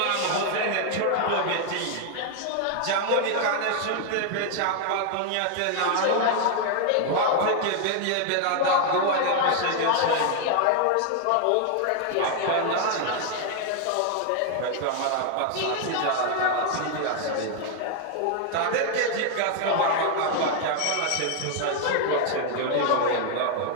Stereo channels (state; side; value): different; both; correlation 0.00